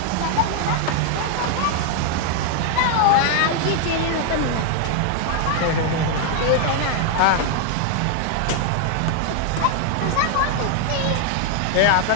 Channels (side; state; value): both; different; correlation 0.00